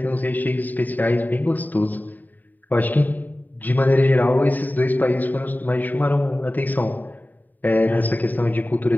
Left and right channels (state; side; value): late; right; 0.086 ms